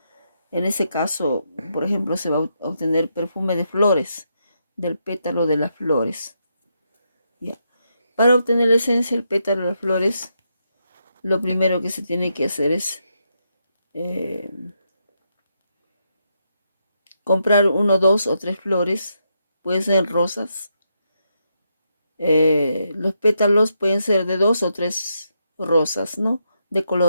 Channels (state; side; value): inverted; both; correlation -0.81